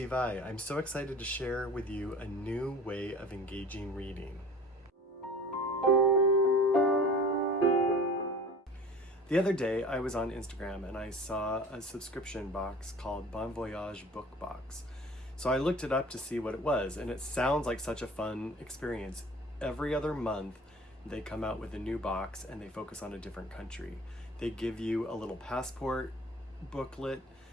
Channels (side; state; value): both; normal; correlation 0.43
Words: I. I'm so excited to share with you a new way of engaging reading. The other day I was on Instagram and I saw a subscription box called Bon Voyage Book Box. So I looked it up to see what it was, and it sounds like such a fun experience. Every other month they come out with a new box and they focus on a different country. They give you a little passport booklet,